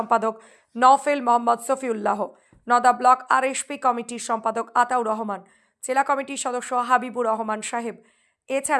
নওফেল মোহাম্মদ সফিউল্লাহ, নওদা ব্লক আরএসপি কমিটির সম্পাদক আতাউর রহমান, জেলা কমিটির সদস্য হাবিবুর রহমান সাহেব।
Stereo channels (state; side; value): identical; both; correlation 1.00